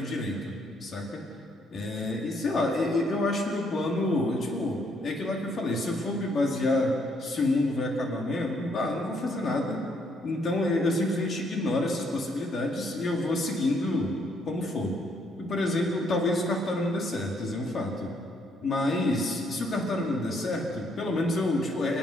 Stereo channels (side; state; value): both; normal; correlation 0.71